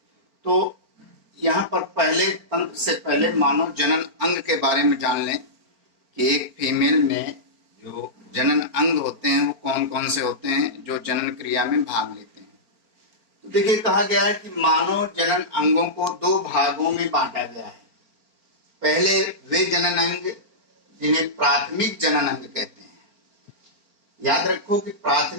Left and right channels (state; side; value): late; left; 4.4 ms